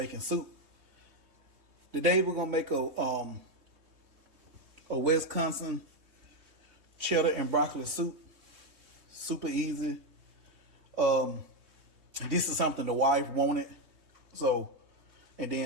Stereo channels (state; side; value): late; left; 3.2 ms